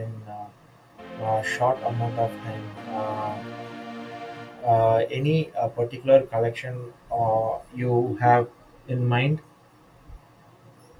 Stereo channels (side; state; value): both; identical; correlation 1.00